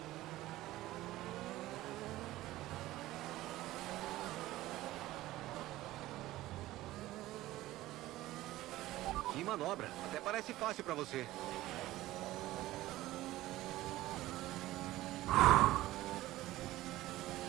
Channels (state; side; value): quieter; left; 16.4 dB